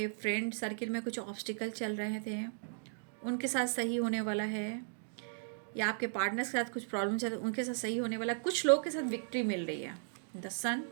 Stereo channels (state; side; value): silent; left; digital silence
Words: फ्रेंड सर्किल में कुछ ऑब्स्टिकल चल रहे थे, उनके साथ सही होने वाला है, या आपके पार्टनर के साथ कुछ प्रॉब्लम चल रही है, उनके साथ सही होने वाला है। कुछ लोग के साथ विक्ट्री मिल रही है, द सन